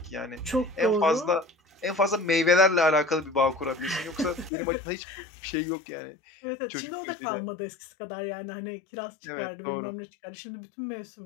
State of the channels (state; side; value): drops out; right; at 4.5 s